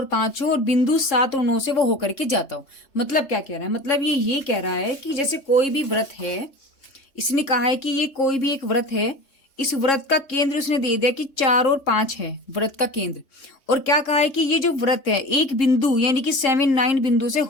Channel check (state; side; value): late; right; 3.7 ms